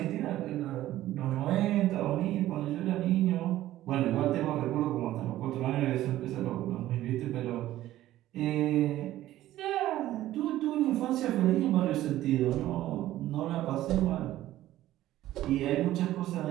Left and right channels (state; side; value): quieter; left; 14.4 dB